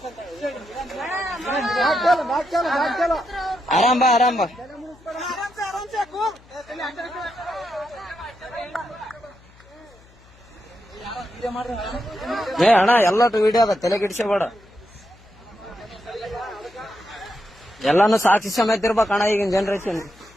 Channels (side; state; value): left; noise; hum, 26 dB below the sound